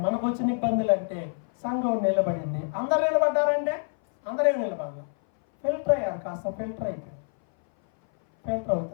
మనకు వచ్చిన ఇబ్బందులు అంటే సంఘం నిలబడింది. అందరు నిలబడ్డారంటే అందరే నిలబడాలి. ఫిల్టర్ అయ్యారు, కాస్త ఫిల్టర్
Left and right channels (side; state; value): right; silent; 58 dB below the other